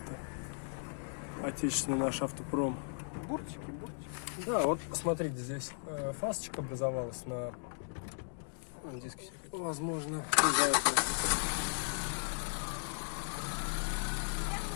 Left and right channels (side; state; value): right; silent; digital silence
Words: Отечественный наш автопром. Буртики. Да, вот смотрите, здесь фасочка образовалась на диске. Возможно, из-за этого.